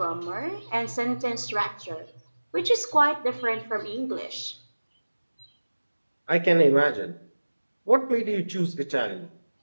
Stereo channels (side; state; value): both; inverted; correlation -1.00